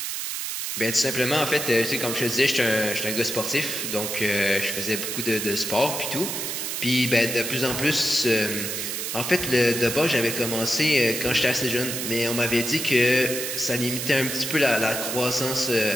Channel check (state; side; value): noise; right; hiss, 3 dB below the sound